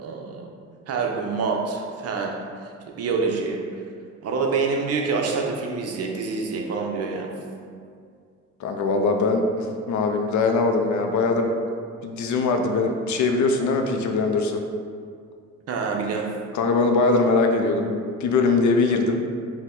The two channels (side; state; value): both; normal; correlation 0.17